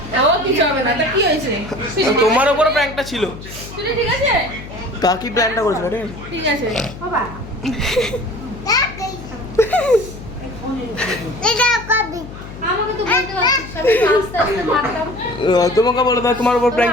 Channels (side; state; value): left; noise; hum, 14 dB below the sound